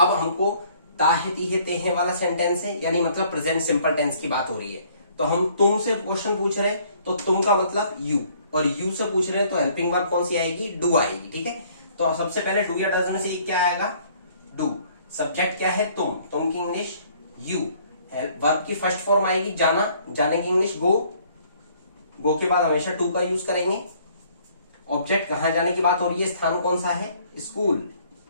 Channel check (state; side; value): inverted; both; correlation -0.60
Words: हमको ताहे तीहे तेहे वाला सेंटेंस है, यानी मतलब प्रेजेंट सिंपल टेंस की बात हो रही है। तो हम तुम से क्वेश्चन पूछ रहे हैं तो तुम का मतलब यू, और यू से पूछ रहे हैं तो हेल्पिंग वर्ब कौन सी आएगी? डू आएगी। ठीक है, तो सबसे पहले डू या डज में से क्या आएगा? डू। सब्जेक्ट क्या है? तुम की इंग्लिश यू। वर्ब की फर्स्ट फॉर्म आएगी जाना, जाने की इंग्लिश गो। गो के बाद हमेशा टू का यूज करेंगे। ऑब्जेक्ट कहां जाने की बात हो रही है, स्थान कौन सा है? स्कूल।